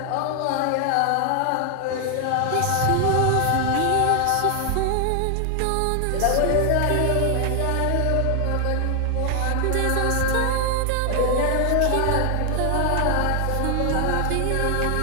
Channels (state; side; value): different; both; correlation 0.00